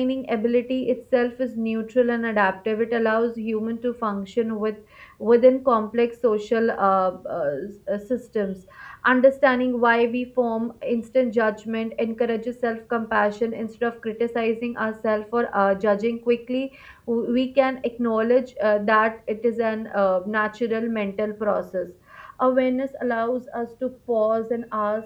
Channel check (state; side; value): identical; both; correlation 1.00